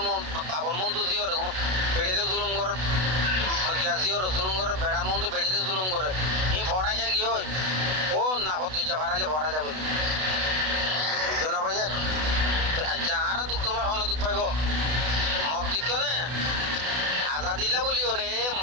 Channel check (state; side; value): late; left; 32 ms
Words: মন বাবর মন্তু জিওর বেড়েতে জুলুম করে জিওর জুলুম করে বেড়ার মন্তু বেড়িতে জুলুম করে ই ভরা কে গিয়ে ও না হতে ভাড়ালে ভরা যাবে বুঝছো না ভাইয়া যাহারা দুঃখ তোমার হন দুঃখ পাইব মগ দিক নে আজাদিল্লা বলি ওরে